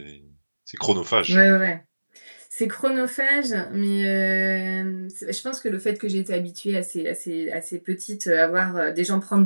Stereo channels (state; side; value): inverted; both; correlation -1.00